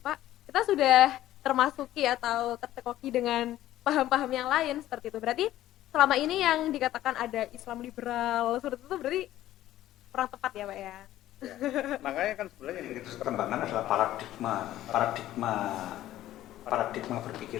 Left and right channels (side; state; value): right; quieter; 13.9 dB